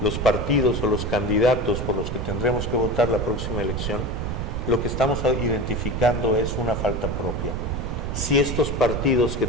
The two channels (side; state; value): right; noise; rumble, 3 dB below the sound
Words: los partidos o los candidatos por los que tendremos que votar la próxima elección, lo que estamos identificando es una falta propia. Si estos partidos que